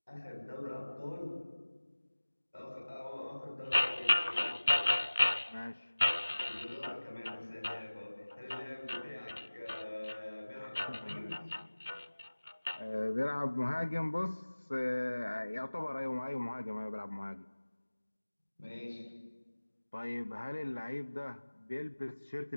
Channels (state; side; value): inverted; both; correlation -1.00